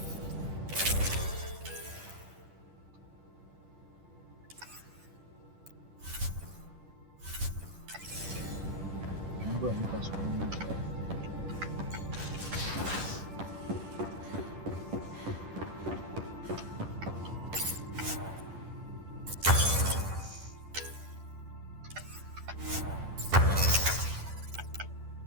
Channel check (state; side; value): late; left; 10 ms